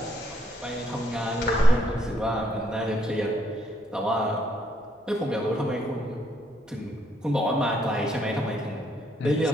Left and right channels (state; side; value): normal; both; correlation 0.71